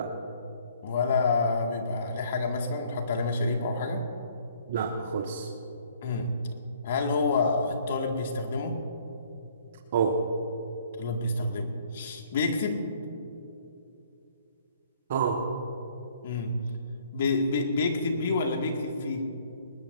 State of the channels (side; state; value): both; inverted; correlation -0.60